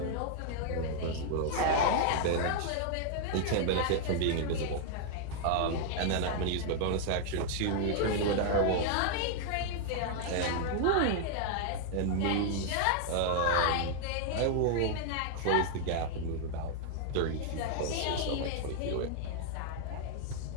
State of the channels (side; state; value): both; different; correlation 0.00